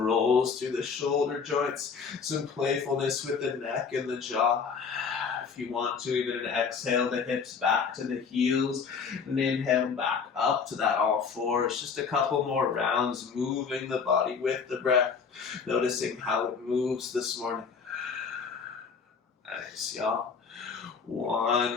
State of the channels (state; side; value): quieter; right; 5.8 dB